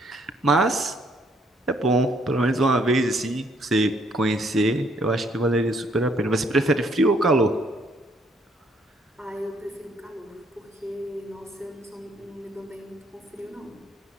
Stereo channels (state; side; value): normal; both; correlation 0.67